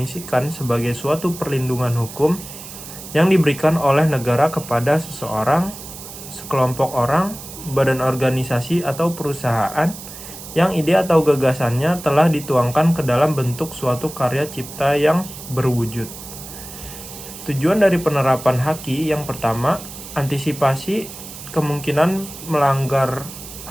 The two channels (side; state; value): right; noise; hiss, 13 dB below the sound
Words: sebagai suatu perlindungan hukum yang diberikan oleh negara kepada seseorang, sekelompok orang, badan organisasi atau perusahaan yang ide atau gagasannya telah dituangkan ke dalam bentuk suatu karya cipta yang berwujud. Tujuan dari penerapan haki yang pertama, antisipasi kemungkinan melanggar